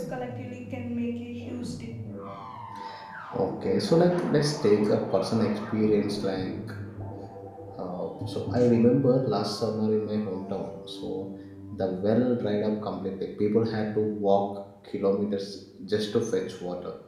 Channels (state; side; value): identical; both; correlation 1.00